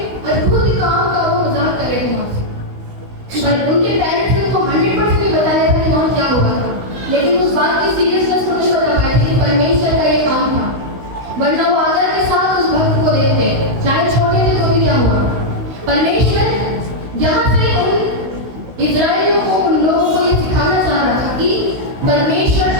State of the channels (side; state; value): left; late; 16 ms